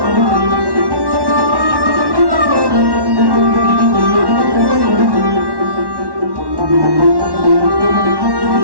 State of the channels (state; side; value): late; left; 1.1 ms